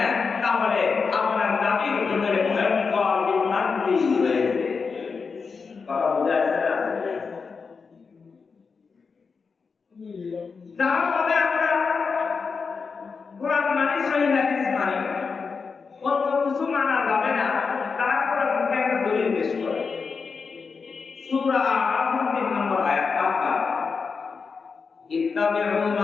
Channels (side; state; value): right; quieter; 5.1 dB